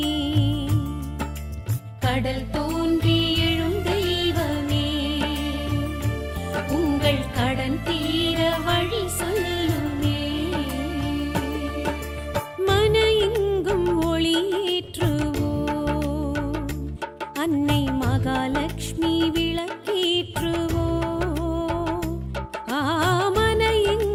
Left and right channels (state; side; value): identical; both; correlation 1.00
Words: கடல் தோன்றி எழும் தெய்வமே, உங்கள் கடன் தீர வழி சொல்லுமே. மன எங்கும் ஒளியேற்றுவோம், அன்னை மகாலட்சுமி விளக்கேற்றுவோம். ஆமன